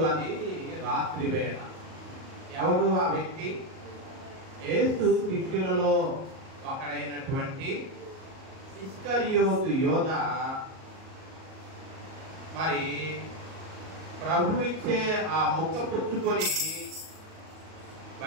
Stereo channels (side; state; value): left; late; 38 ms